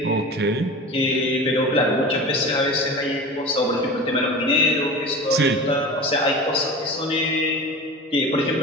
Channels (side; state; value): both; normal; correlation 0.33